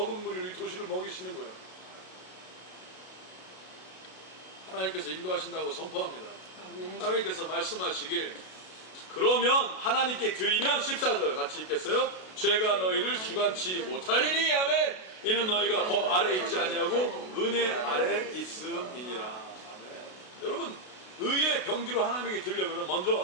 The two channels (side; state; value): right; late; 32 ms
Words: 무리로 이 도시를 먹이시는 거예요. 하나님께서 인도하신다고 선포합니다. 아멘. 하나님께서 말씀하시길, 그러면 하나님께 드리면 14절 같이 읽겠어요? 죄가 너희를 주관치 못하리니. 아멘. 이는 너희가 법 아래 있지 아니하고 은혜 아래 있음이니라. 아멘. 여러분, 의의 병기로 하나님에게 드리려면